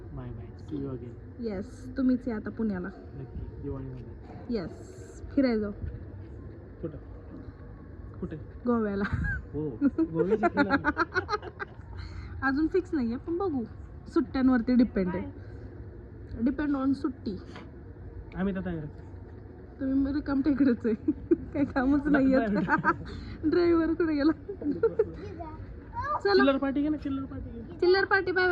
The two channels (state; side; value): identical; both; correlation 1.00